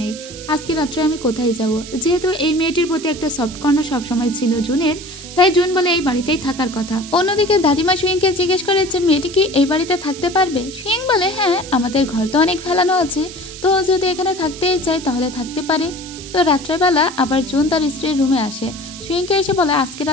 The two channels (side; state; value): right; noise; hiss, 14 dB below the sound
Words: নেই, আজকে রাত্রে আমি কোথায় যাব? যেহেতু এই মেয়েটির প্রতি একটা সফট কর্নার সবসময় ছিল জুনের, তাই জুন বলে এই বাড়িতেই থাকার কথা। অন্যদিকে দাদিমা সুইংকে জিজ্ঞেস করে যে মেয়েটি কি এই বাড়িতে থাকতে পারবে? সুইং বলে, হ্যাঁ, আমাদের ঘর তো অনেক ফেলানো আছে, তো যদি এখানে থাকতেই চাই তাহলে থাকতে পারে। তো রাত্রেবেলা আবার জুন তার স্ত্রীর রুমে আসে। সুইংকে এসে বলে, আজকে